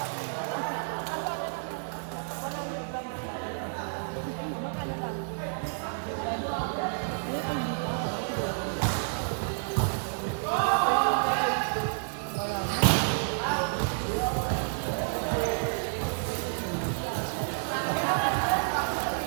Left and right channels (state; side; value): silent; left; digital silence